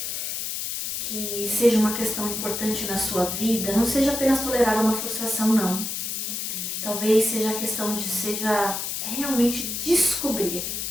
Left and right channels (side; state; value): left; noise; hiss, 3 dB below the sound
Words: que seja uma questão importante na sua vida não seja apenas tolerar uma frustração, não. Talvez seja a questão de realmente descobrir